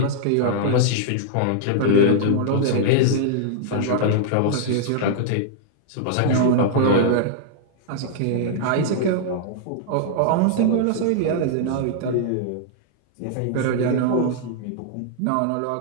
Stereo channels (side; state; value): both; different; correlation -0.01